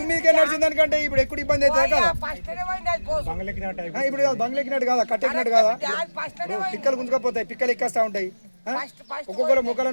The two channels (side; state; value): both; inverted; correlation -1.00